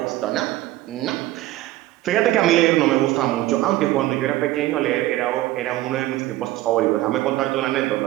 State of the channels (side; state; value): left; quieter; 16.2 dB